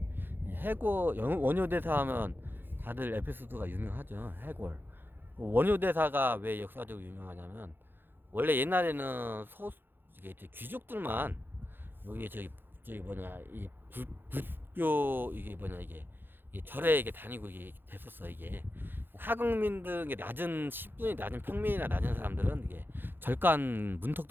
원효대사 하면 다들 에피소드가 유명하죠. 해골. 원효대사가 왜 역사적으로 유명하냐면, 원래 옛날에는 이게 이제 귀족들만, 여기 저기 뭐냐, 불교, 이게 뭐냐, 이게 절에 이게 다니고 이게 됐었어, 이게. 하급민들, 이게 신분이 낮은 평민이나 낮은 사람들은 이게 절간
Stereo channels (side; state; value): left; late; 0.099 ms